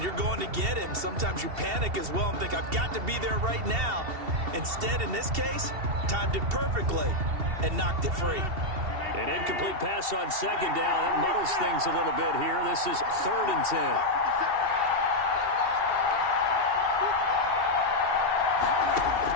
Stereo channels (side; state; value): left; late; 2.7 ms